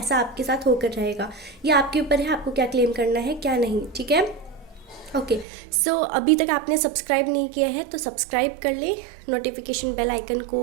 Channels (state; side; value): drops out; left; at 5.5 s